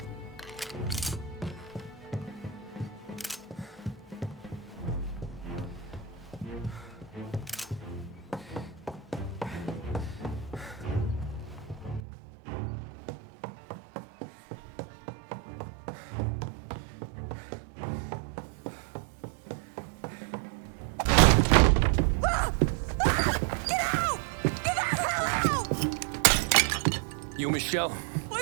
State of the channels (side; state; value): left; drops out; at 12.0 s